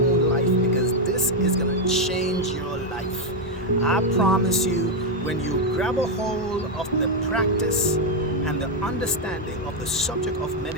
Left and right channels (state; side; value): normal; both; correlation 0.03